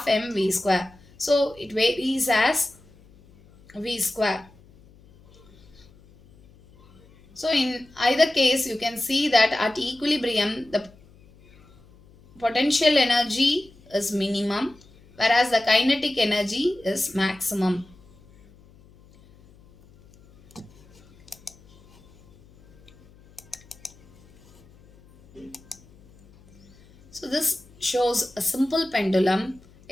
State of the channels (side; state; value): left; noise; hum, 27 dB below the sound